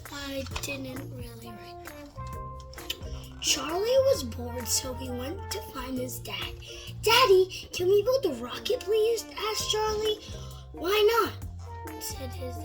I didn't really write that. Charlie was bored, so he went to find his dad. "Daddy, can we build a rocket, please?" asked Charlie. "Why not?" said his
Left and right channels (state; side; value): identical; both; correlation 1.00